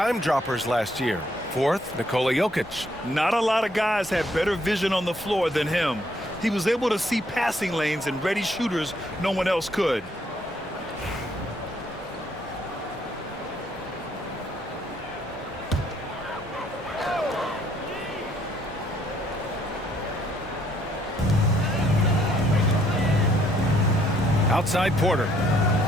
droppers last year. Fourth, Nikola Jokic. Not a lot of guys had better vision on the floor than him. He was able to see passing lanes and ready shooters no one else could. Outside Porter.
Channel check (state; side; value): normal; both; correlation 0.68